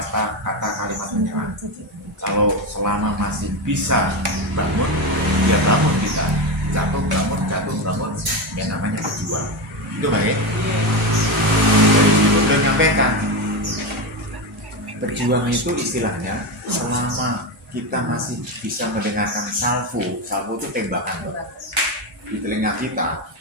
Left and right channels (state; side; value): normal; both; correlation 0.15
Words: kata kalimat menyerah. Kalau selama masih bisa bangun, ya bangun kita. Jatuh bangun, yang namanya berjuang. Itu baik. Dari situ beliau menyampaikan, berjuang itu istilahnya selama kita masih bisa mendengarkan salvo itu tembakan di telinga kita,